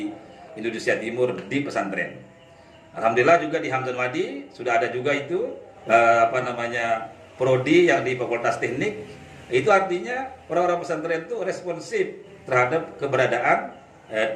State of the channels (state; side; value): identical; both; correlation 1.00